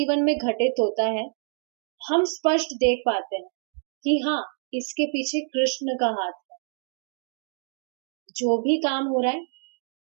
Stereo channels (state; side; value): silent; left; 57 dB below the other